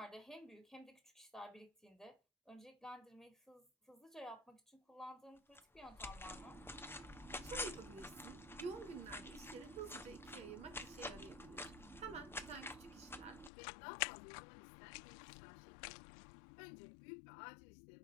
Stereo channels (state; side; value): drops out; right; at 13.5 s